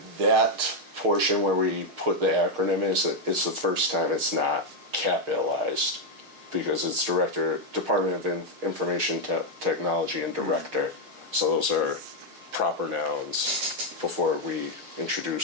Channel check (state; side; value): late; left; 6.4 ms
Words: that portion where we put the acronym is, it's the first time it's not capitalized, because it's Department of Information Technology and Director. So those are proper nouns before we